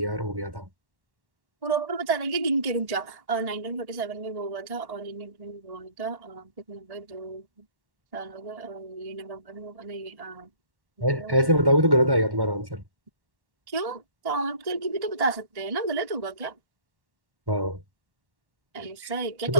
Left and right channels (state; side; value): late; left; 1.1 ms